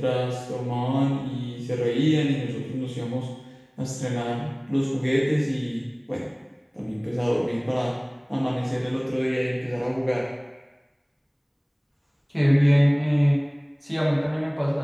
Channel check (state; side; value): identical; both; correlation 1.00